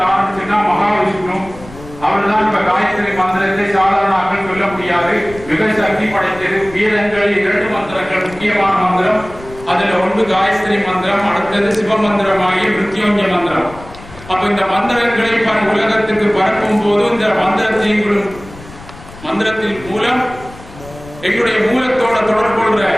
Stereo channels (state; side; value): noise; left; rumble, 18 dB below the sound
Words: ஆரம்பிச்சுன்னா மகாவிஷ்ணு. அவர் தான் இப்ப காயத்ரி மந்திரத்தை சாதாரண ஆக்கள் சொல்ல முடியாது, மிக சக்தி படைத்தது. வீரங்களில் 2 மந்திரங்கள் முக்கியமான மந்திரம். அதுல ஒன்று காயத்ரி மந்திரம், அடுத்தது சிவ மந்திரமாகிய மிருத்யுஞ்சய மந்திரம். அப்ப இந்த மந்திரங்களை உலகத்துக்கு பரப்பும் போது இந்த மந்திரத்தின் மூலம் எங்களுடைய மூலத்தோட தொடர்பு கொள்ற